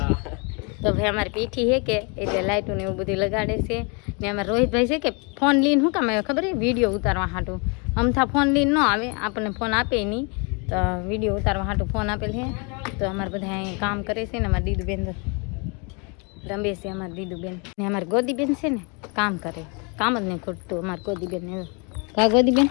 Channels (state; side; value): quieter; right; 33.7 dB